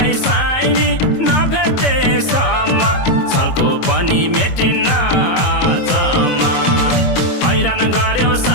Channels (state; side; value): late; right; 22 ms